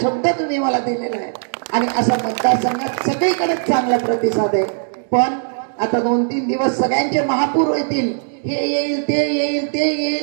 शब्द तुम्ही मला दिलेला आहे. आणि असा मतदारसंघात सगळीकडे चांगला प्रतिसाद आहे. पण आता 2-3 दिवस सगळ्यांचे महापूर येतील, हे येईल ते येईल ते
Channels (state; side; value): silent; left; digital silence